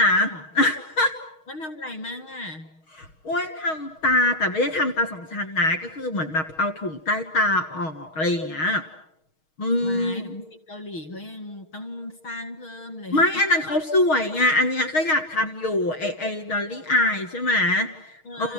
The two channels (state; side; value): late; right; 6.4 ms